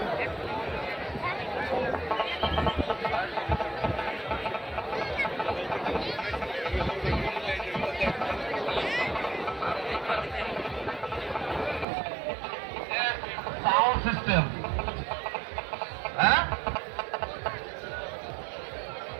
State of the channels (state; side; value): drops out; left; at 11.9 s